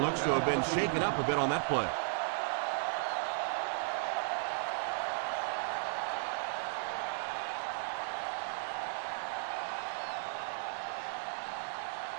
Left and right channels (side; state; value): left; silent; 54 dB below the other